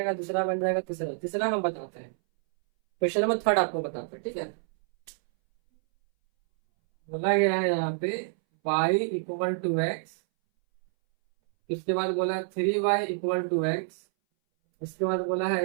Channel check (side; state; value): left; silent; 59 dB below the other